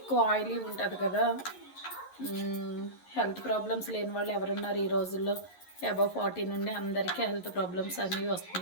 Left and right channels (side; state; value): right; late; 11 ms